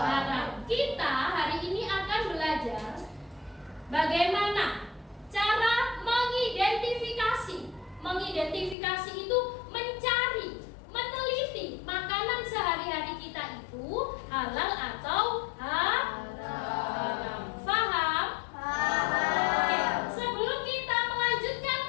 Kita hari ini akan belajar bagaimana cara mengidentifikasi. Mengidentifikasi itu mencari, meneliti makanan sehari-hari kita itu halal atau haram. Faham? Oke, sebelum kita melanjutkan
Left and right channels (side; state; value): right; drops out; at 8.8 s